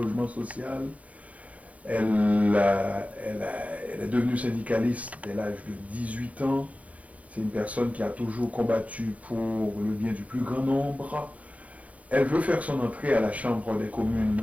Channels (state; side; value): late; left; 0.068 ms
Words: social. Elle est devenue syndicaliste dès l'âge de 18 ans. C'est une personne qui a toujours combattu pour le bien du plus grand nombre. Elle veut faire son entrée à la Chambre des